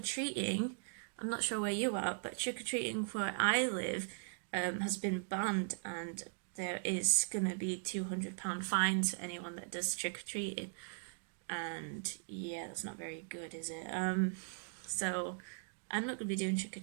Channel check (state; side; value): silent; left; digital silence